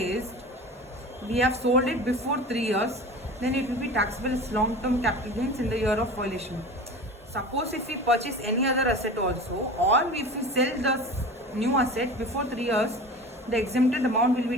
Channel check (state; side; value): normal; both; correlation 0.35